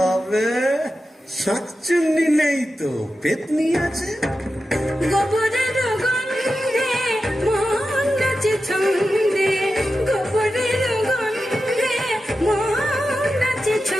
শাকচুন্নি নেই তো, পেতনি আছে। গোবরের গন্ধে মন নাচে ছন্দে, গোবরের গন্ধে মন নাচে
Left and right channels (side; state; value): both; normal; correlation 0.91